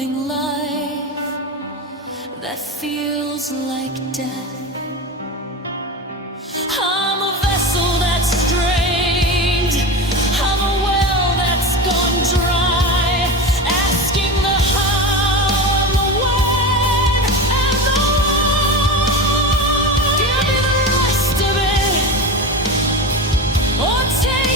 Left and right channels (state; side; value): normal; both; correlation 0.24